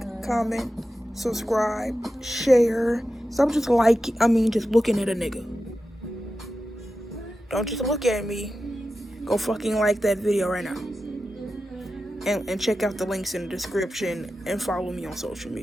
comment, subscribe, share. Stop just just looking at a nigga. Don't just look at me. Go fucking like that video right now. And check out the links in the description and follow me on social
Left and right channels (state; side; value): normal; both; correlation 0.92